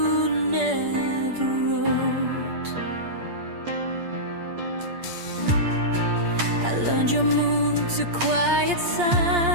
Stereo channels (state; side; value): late; left; 8.6 ms